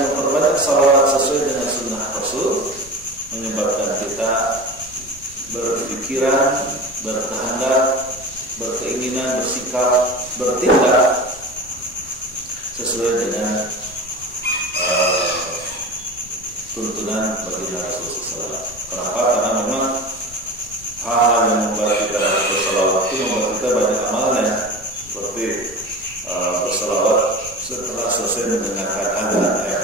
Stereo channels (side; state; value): left; noise; rumble, 20 dB below the sound